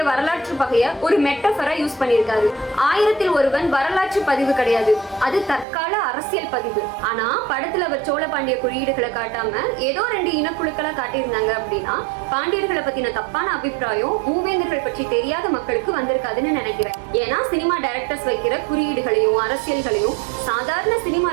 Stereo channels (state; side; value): drops out; left; at 5.7 s